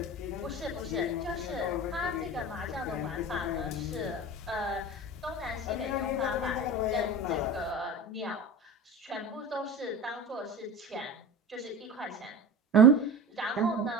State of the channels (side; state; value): both; normal; correlation 0.30